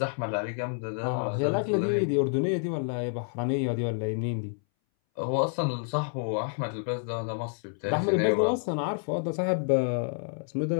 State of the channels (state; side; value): silent; right; 59 dB below the other